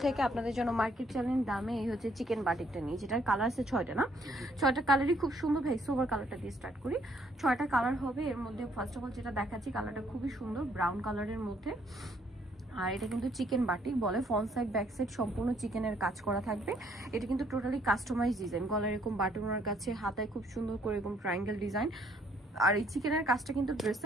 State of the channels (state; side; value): normal; both; correlation 0.67